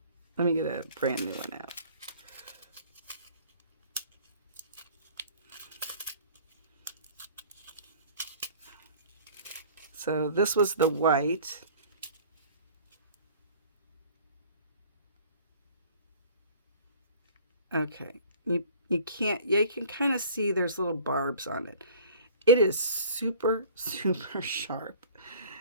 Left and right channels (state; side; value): inverted; both; correlation -0.48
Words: Let me get a brand new one out. So this was the white. Okay, you can kind of see there's little barbs on it. It is super, super sharp.